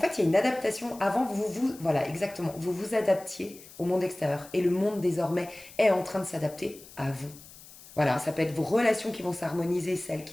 il y a une adaptation. Avant voilà exactement, vous vous adaptiez au monde extérieur et le monde désormais est en train de s'adapter à vous. Voilà, ça peut être vos relations qui vont s'harmoniser, celles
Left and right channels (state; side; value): noise; left; hiss, 20 dB below the sound